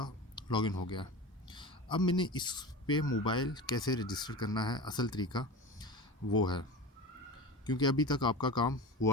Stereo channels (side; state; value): both; normal; correlation 0.30